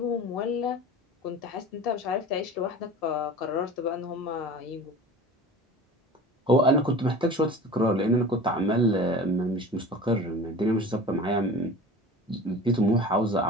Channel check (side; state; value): both; normal; correlation 0.38